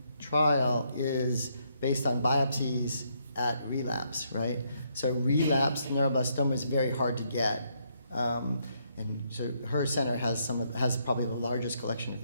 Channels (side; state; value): both; inverted; correlation -0.75